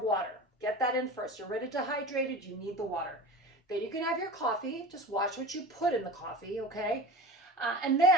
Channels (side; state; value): both; normal; correlation 0.33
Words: water. Get that in first. You're already dehydrated. You need the water. Then you can have your coffee. Just watch what you put in the coffee, okay? And